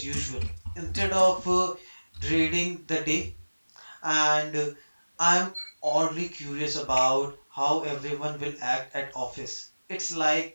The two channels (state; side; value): inverted; both; correlation -1.00